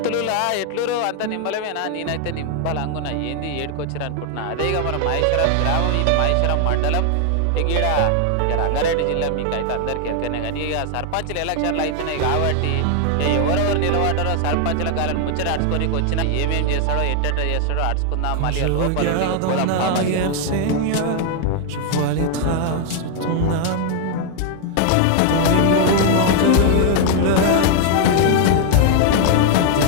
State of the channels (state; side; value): different; both; correlation 0.00